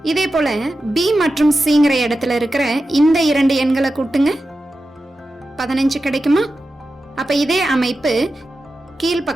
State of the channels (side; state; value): both; normal; correlation 0.92